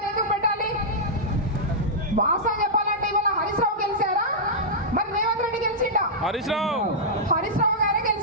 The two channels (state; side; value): normal; both; correlation -0.10